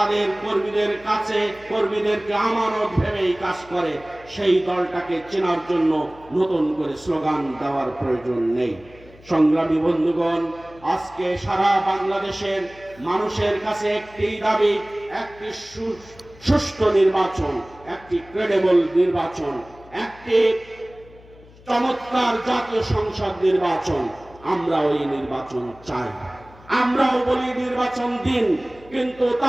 কর্মীদের কাছে কর্মীদেরকে আমানত ভেবেই কাজ করে, সেই দলটাকে চেনার জন্য নতুন করে স্লোগান দেওয়ার প্রয়োজন নেই। সংগ্রামী বন্ধুগণ, আজকে সারা বাংলাদেশের মানুষের কাছে একটি দাবি, একটি সুষ্ঠু নির্বাচন, একটি ক্রেডিবল নির্বাচন, একটি চমৎকার জাতীয় সংসদ নির্বাচন। আমরা ওই নির্বাচন চাই। আমরাও বলি নির্বাচন দিন, কিন্তু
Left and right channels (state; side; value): noise; left; hum, 24 dB below the sound